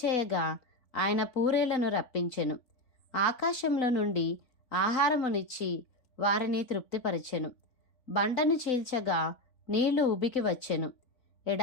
చేయగా ఆయన పూరేళ్లను రప్పించెను. ఆకాశంలో నుండి ఆహారమునిచ్చి వారిని తృప్తిపరచెను. బండను చీల్చగా నీళ్లు ఉబికి వచ్చెను,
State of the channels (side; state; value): right; late; 4.0 ms